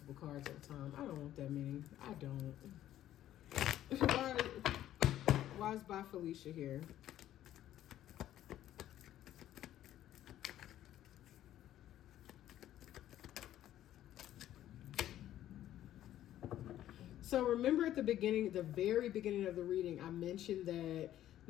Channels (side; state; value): right; quieter; 12.5 dB